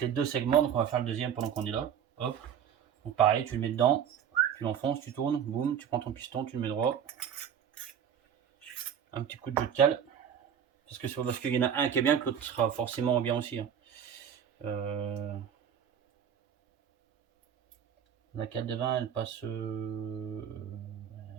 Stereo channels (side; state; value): left; quieter; 8.7 dB